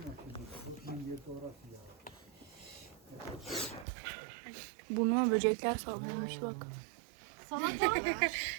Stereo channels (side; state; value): left; drops out; at 3.9 s